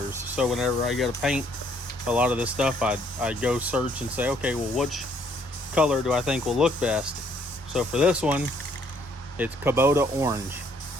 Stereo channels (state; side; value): normal; both; correlation 0.66